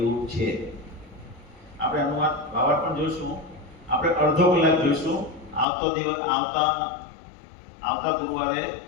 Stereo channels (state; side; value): drops out; right; at 5.7 s